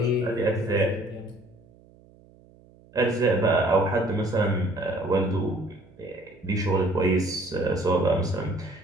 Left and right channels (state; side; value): noise; right; hum, 27 dB below the sound